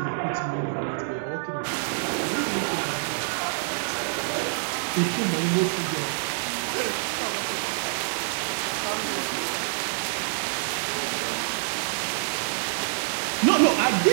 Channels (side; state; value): left; silent; 58 dB below the other